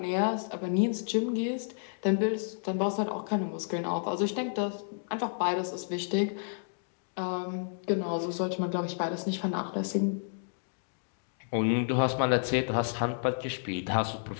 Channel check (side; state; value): right; silent; digital silence